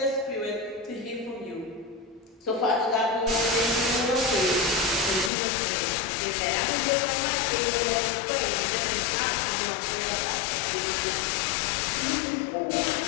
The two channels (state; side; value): drops out; right; at 5.3 s